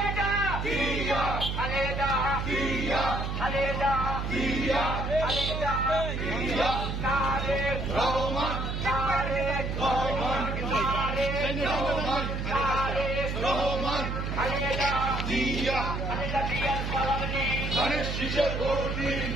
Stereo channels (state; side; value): noise; right; hum, 2 dB below the sound